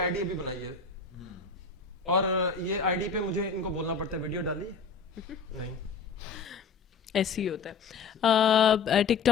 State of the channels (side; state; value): right; quieter; 5.2 dB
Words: ڈی ابھی بنائی ہے اور یہ آئی ڈی پہ مجھے ان کو بولنا پڑتا ہے ویڈیو ڈالی ہے نہیں, ایسے ہی ہوتا ہے. ٹک